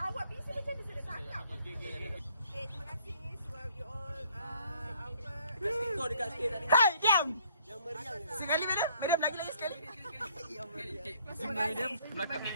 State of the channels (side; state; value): both; inverted; correlation -0.60